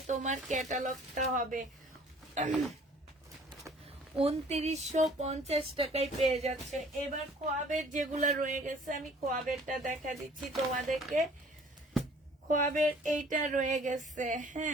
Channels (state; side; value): normal; both; correlation 0.53